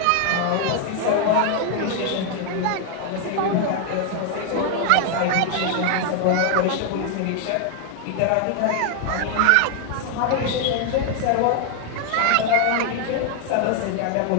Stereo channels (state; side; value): different; both; correlation 0.00